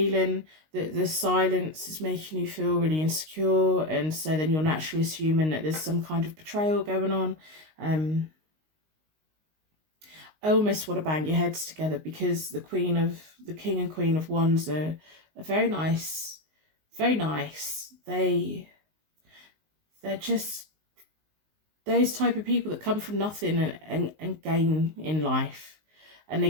that the silence is making you feel really insecure, and so then you're naturally assuming that there's some kind of betrayal going on. I almost want to bang your heads together, because the King and Queen of Wands are very nice, very nice. They're just those type of people that come from nothing and gain in life, and they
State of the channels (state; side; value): late; left; 19 ms